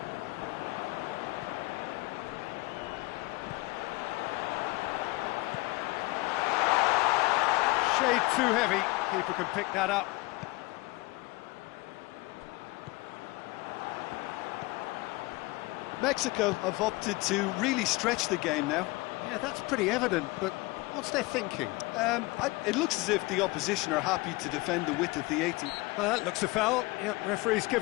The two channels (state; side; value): quieter; right; 22.3 dB